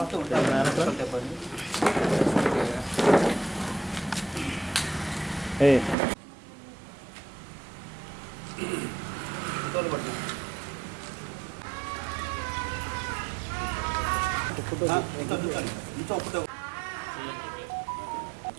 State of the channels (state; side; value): drops out; left; at 6.0 s